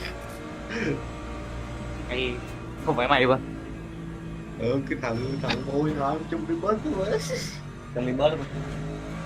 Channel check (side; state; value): both; identical; correlation 1.00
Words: Hay không phải mày ba. Cái thằng hồi hoài chung đi bớt thôi mà. Trong đi bớt luôn.